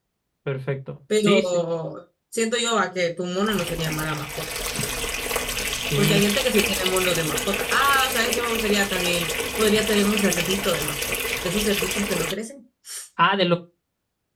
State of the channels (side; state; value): both; identical; correlation 1.00